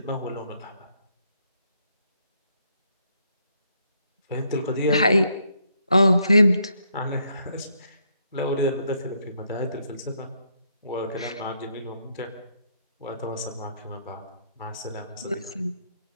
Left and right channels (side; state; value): both; inverted; correlation -0.74